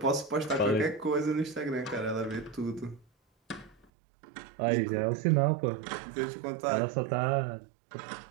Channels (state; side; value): drops out; left; at 3.9 s